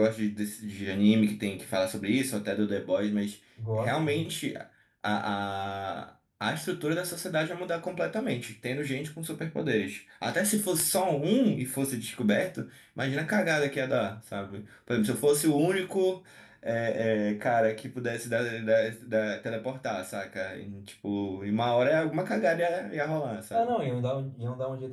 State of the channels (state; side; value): identical; both; correlation 1.00